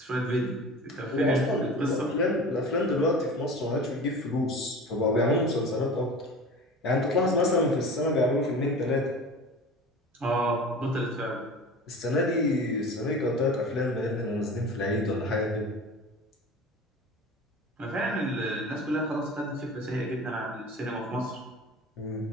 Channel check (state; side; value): normal; both; correlation 0.36